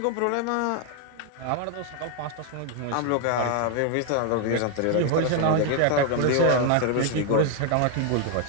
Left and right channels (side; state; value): both; different; correlation 0.01